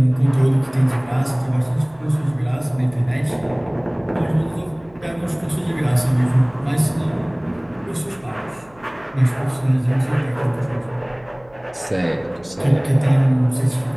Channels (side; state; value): right; noise; hum, 28 dB below the sound